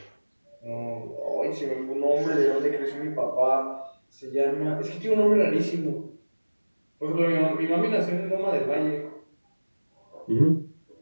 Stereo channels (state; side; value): inverted; both; correlation -1.00